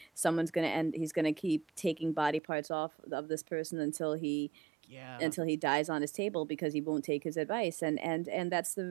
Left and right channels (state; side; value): drops out; left; at 2.4 s